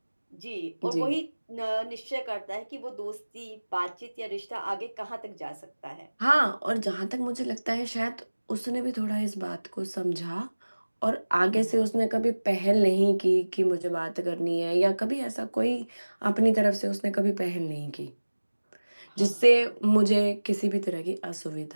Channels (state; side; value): inverted; both; correlation -1.00